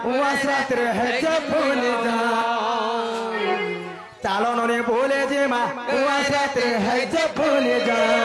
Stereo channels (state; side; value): identical; both; correlation 1.00